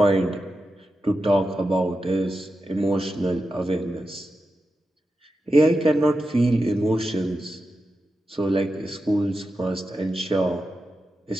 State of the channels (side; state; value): both; normal; correlation 0.90